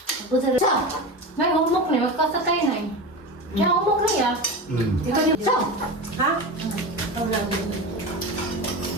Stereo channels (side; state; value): both; normal; correlation 0.25